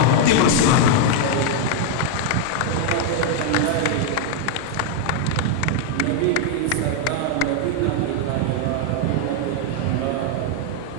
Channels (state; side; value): different; both; correlation 0.00